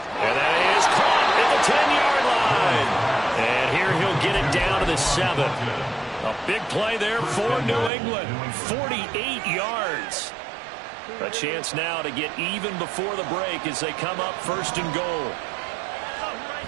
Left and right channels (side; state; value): left; drops out; at 7.9 s